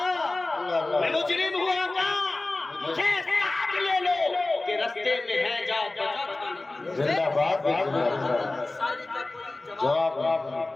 میں مجرم ہوا تھا. مجھے ساتھ لے لو کہ رستے میں ہے جا بچا کھانے. زندہ باد. شاعری کا کوئی جواب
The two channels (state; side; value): quieter; right; 3.0 dB